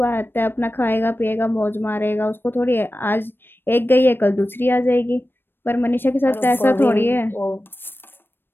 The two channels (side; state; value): right; late; 0.099 ms